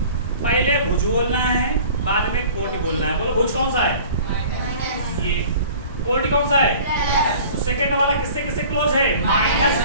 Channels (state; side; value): inverted; both; correlation -0.46